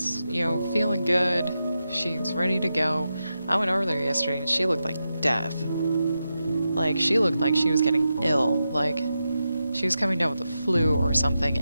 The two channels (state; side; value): inverted; both; correlation -0.89